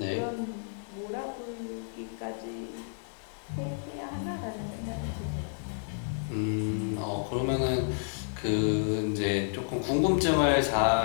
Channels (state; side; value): silent; right; digital silence